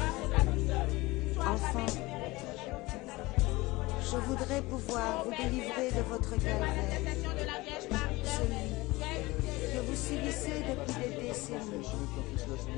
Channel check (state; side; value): quieter; right; 21.2 dB